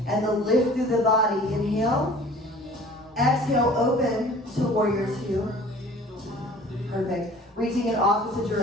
and the lift through the body. Inhale. Exhale, open to warrior two. Perfect. Reaching in opposite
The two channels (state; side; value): normal; both; correlation 0.48